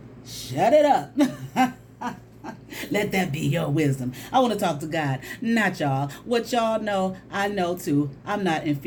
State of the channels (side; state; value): both; identical; correlation 1.00